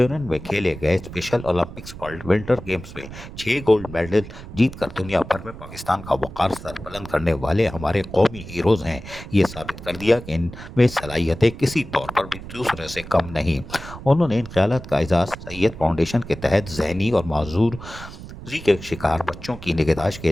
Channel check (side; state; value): right; noise; rumble, 13 dB below the sound